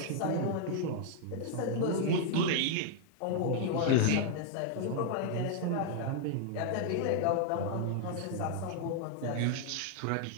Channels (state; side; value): different; both; correlation 0.00